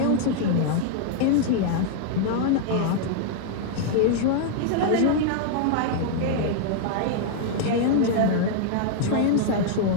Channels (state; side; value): different; both; correlation -0.01